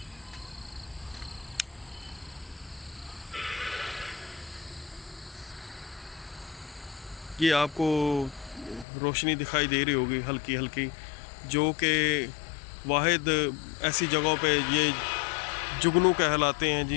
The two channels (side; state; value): right; drops out; at 8.8 s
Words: یہ آپ کو روشنی دکھائی دے رہی ہوگی ہلکی ہلکی، جو کہ واحد ایسی جگہوں پہ یہ جگنو کہلاتے ہیں